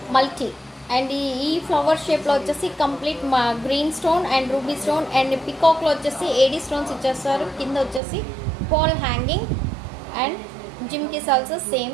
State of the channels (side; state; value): left; drops out; at 8.0 s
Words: multi. And ఈ flower షేప్లో వచ్చేసి complete మా green stone and ruby stone and పికాక్లో వచ్చేసి AD stones ఇచ్చేస్తారు. కింద వచ్చేసి పాల్ హ్యాంగింగ్ అండ్ జిమ్కిస్ ఆల్సో